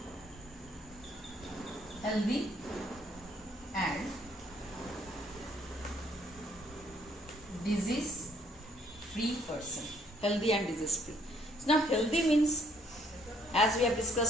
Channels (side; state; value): both; normal; correlation 0.65